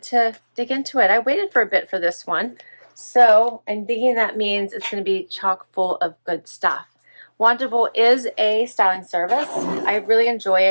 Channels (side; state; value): both; inverted; correlation -1.00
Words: to dig into it. I waited for a bit for this one, so I'm thinking that means it's going to be chock full of good stuff. Wantable is a styling service. I really enjoy